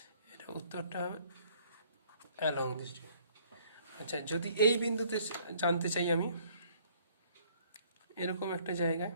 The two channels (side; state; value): both; inverted; correlation -0.60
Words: এটা উত্তরটা হবে অ্যালং দিস। আচ্ছা, যদি এই বিন্দুতে জানতে চাই আমি, এরকম একটা জায়গায়,